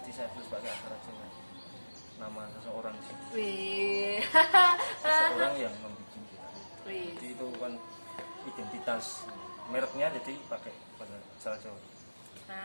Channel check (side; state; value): both; inverted; correlation -1.00